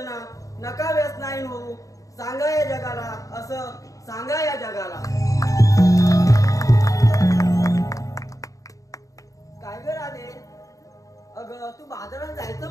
नका व्यसनाईन होऊ. सांगा या जगाला, असं सांगा या जगाला. काय ग राधे, अगं तू बाजारात जायचं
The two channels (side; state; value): right; late; 0.16 ms